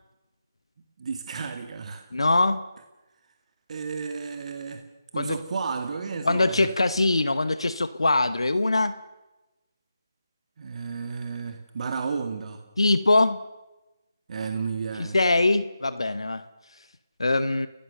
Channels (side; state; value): both; inverted; correlation -0.88